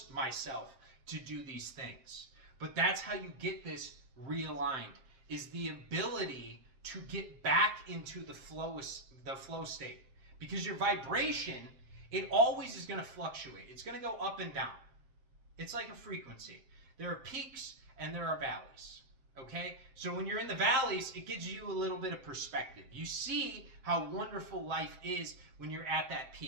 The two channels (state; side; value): late; left; 7.5 ms